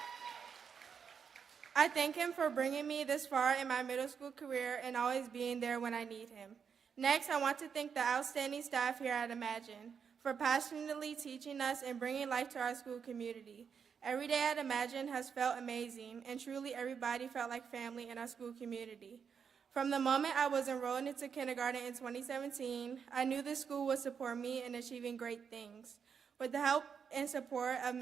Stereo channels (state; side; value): quieter; left; 6.7 dB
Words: I thank him for bringing me this far in my middle school career and always being there when I need him. Next, I want to thank the outstanding staff here at Imagine for passionately teaching us and bringing life to our school community. Every day at Imagine has felt amazing, and truly everybody felt like family in our school community. From the moment I was enrolled into kindergarten in 2017, I knew this school would support me in achieving great things. With the help and support of